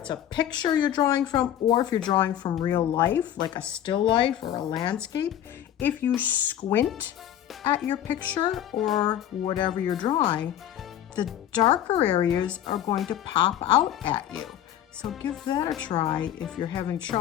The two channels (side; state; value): right; quieter; 11.1 dB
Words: a picture you're drawing from or if you're drawing from real life, like a still life or a landscape, if you squint at your picture or whatever you're drawing, the darker areas are going to pop out at you. So give that a try if you're having